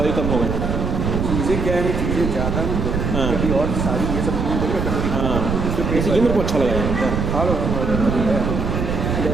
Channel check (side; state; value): right; noise; rumble, 1 dB below the sound